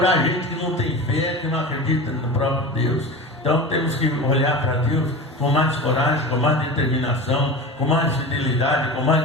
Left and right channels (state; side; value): normal; both; correlation 0.30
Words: gente que não tem fé, que não acredita no próprio Deus. Então temos que olhar para Deus com mais coragem, com mais determinação, com mais fidelidade, com